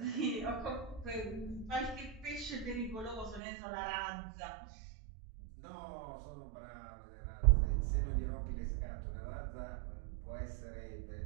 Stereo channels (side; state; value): left; drops out; at 3.4 s